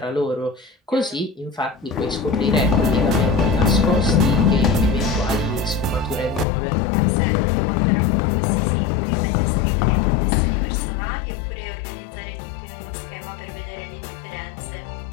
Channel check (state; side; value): drops out; right; at 6.5 s